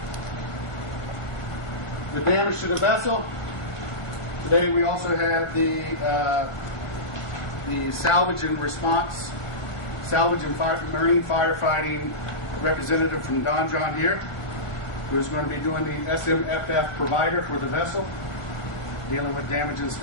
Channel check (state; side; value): late; right; 1.6 ms